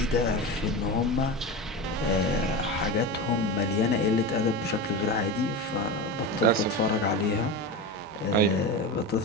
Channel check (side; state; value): both; normal; correlation 0.23